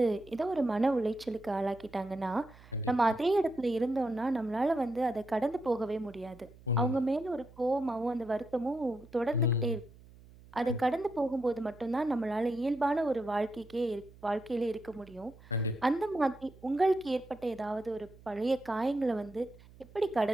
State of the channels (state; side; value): noise; right; hum, 23 dB below the sound